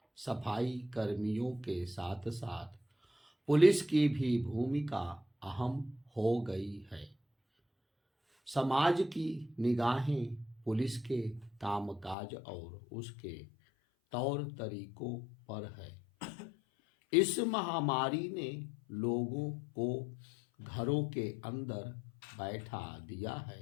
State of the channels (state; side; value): drops out; right; at 12.2 s